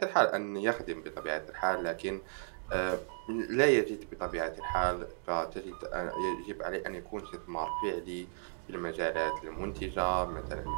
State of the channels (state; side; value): silent; left; digital silence